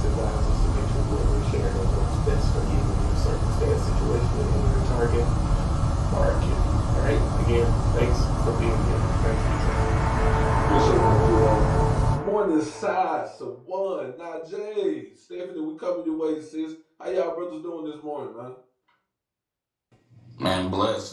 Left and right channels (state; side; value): identical; both; correlation 1.00